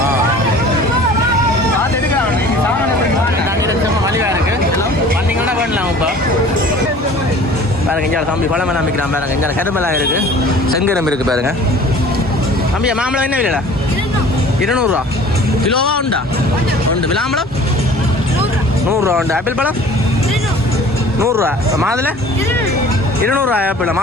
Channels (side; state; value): both; normal; correlation 0.47